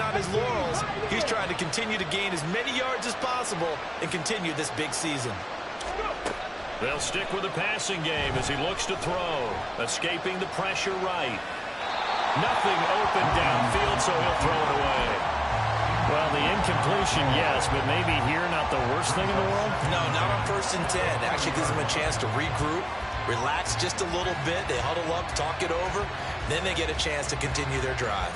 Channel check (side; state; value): both; identical; correlation 1.00